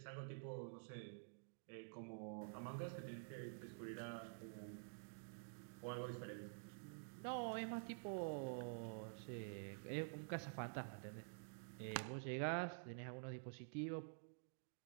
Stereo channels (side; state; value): left; silent; digital silence